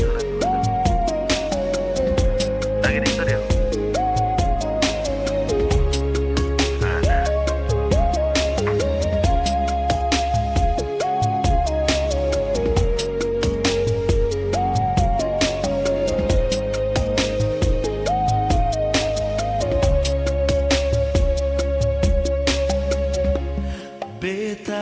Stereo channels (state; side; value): identical; both; correlation 1.00